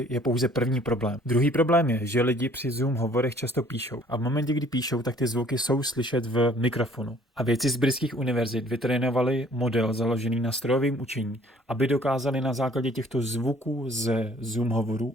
je pouze první problém. Druhý problém je, že lidi při Zoom hovorech často píšou a v momentě, kdy píšou, tak ty zvuky jsou slyšet v mikrofonu. A vědci z britských univerzit vytrénovali model založený na strojovém učení, aby dokázali na základě těchto zvuků ze Zoom hovorů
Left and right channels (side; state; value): both; normal; correlation 0.57